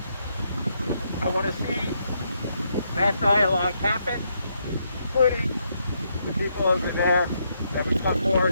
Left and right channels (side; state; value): both; inverted; correlation -0.77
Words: I want to see that dialogue happen, including the people over there that come forward